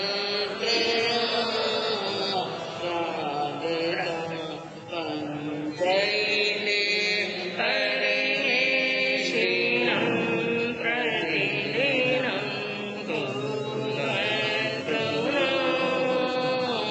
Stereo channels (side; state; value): both; identical; correlation 1.00